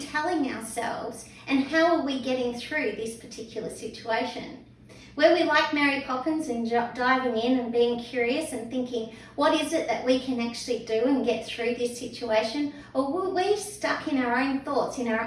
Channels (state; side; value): identical; both; correlation 1.00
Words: telling ourselves? And how are we getting through this particular situation? Were we like Mary Poppins and diving in and being curious and thinking, what is it that we can actually do and get through this situation? Or were we stuck in our own thoughts, in